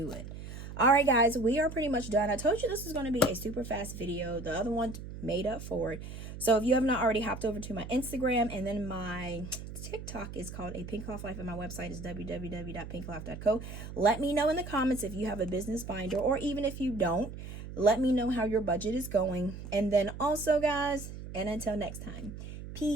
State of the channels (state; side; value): noise; right; hum, 10 dB below the sound